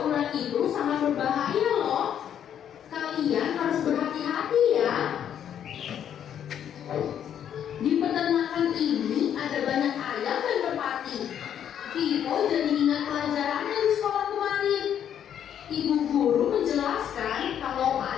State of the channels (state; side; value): quieter; right; 9.4 dB